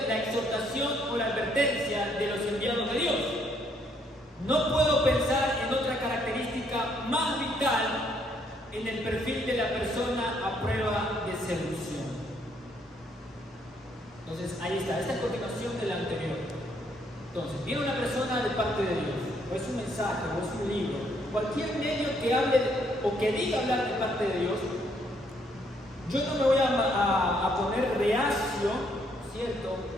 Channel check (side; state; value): both; normal; correlation 0.70